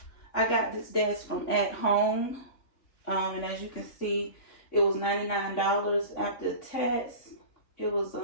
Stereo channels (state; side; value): late; right; 3.5 ms